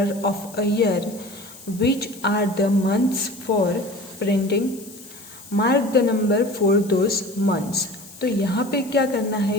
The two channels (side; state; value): left; noise; hiss, 19 dB below the sound